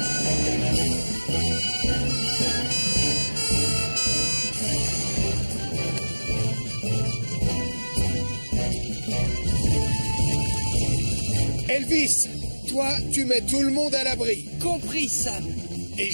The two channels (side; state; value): both; inverted; correlation -1.00